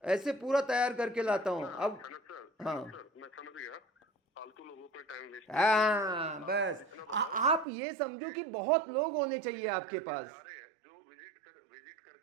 ऐसे पूरा तैयार करके लाता हूँ। अब हाँ मैं समझ गया, फालतू लोगों पे टाइम वेस्ट। हाँ बस आप ये समझो कि बहुत लोग होने चाहिए आपके पास। जा रहे हैं जो विजिट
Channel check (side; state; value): left; drops out; at 7.7 s